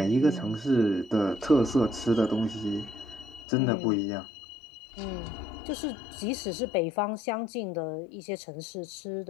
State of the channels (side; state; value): right; drops out; at 3.5 s